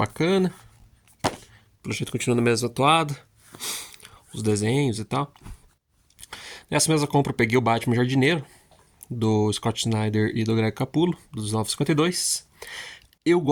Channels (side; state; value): both; identical; correlation 1.00